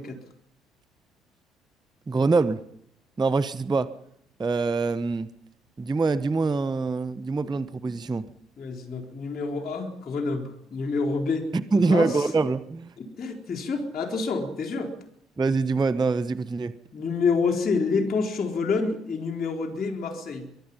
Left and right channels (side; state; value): both; normal; correlation 0.81